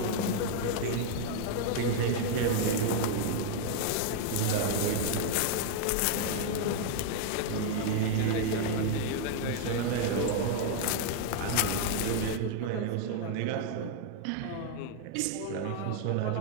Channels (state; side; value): different; both; correlation 0.00